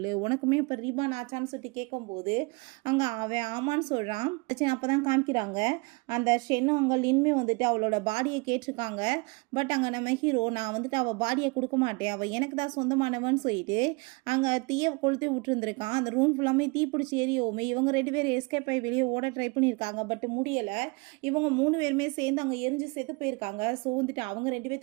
உனக்குமே இப்போ ரீபான் ஆச்சான்னு சொல்லிட்டு கேட்கும்போது அங்கே அவன் ஆமான்னு சொல்கிறான். அப்போ தான் காமிக்கிறாங்க அந்த ஷென்னும் அங்கே லின்மே வந்துட்டு அவளோட பாடியை கேட்டிருக்காங்க. பட் அங்கே நம்ம ஹீரோ நான் வந்துட்டு அவள் பாடியை கொடுக்க மாட்டேன், அவள் எனக்கு தான் சொந்தமானவன்னு சொல்லிட்டு அங்கே தீயை கொளுத்தி விட்டுருந்துருக்கான். அந்த ரூம் ஃபுல்லாமே தீ பிடிச்சி எரியோமே. இவங்க 2 பேர் எஸ்கேப் ஆகி வெளியே ஓட ட்ரை பண்ணியிருக்காங்க, பட் முடியலை. இவங்க 3 பேருமே சேர்ந்து அங்கே எரிஞ்சு செத்து போயிருக்காங்க. ஸோ வந்துட்டு அவங்க 2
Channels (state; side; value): quieter; left; 28.9 dB